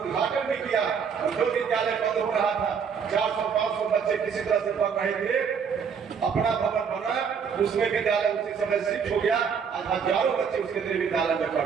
भी किया। और जो विद्यालय बंद हो रहा था, 400-500 बच्चे किसी तरह से पढ़ रहे थे, अपना भवन बना, उसमें विद्यालय उसी समय शिफ्ट हो गया। आज हजारों बच्चे उस केंद्रीय विद्यालय में पढ़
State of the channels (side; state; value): left; quieter; 6.6 dB